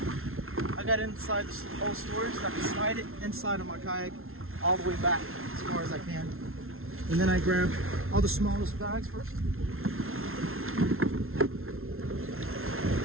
I got inside the whole storage so I can slide it inside of my kayak all the way back as far as I can. And then I grab all the smallest bags first.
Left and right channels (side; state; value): left; late; 0.62 ms